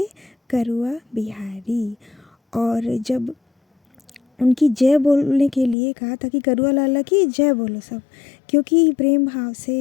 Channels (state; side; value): drops out; right; at 5.8 s